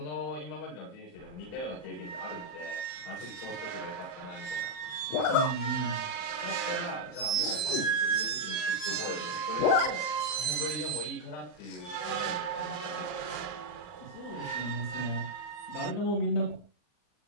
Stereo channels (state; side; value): late; right; 40 ms